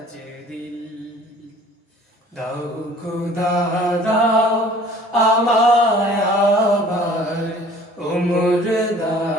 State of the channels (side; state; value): both; normal; correlation 0.51